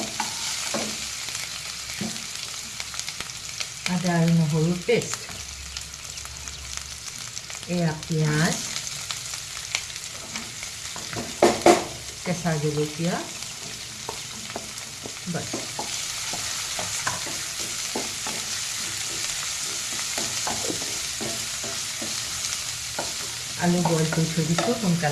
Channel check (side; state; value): both; identical; correlation 1.00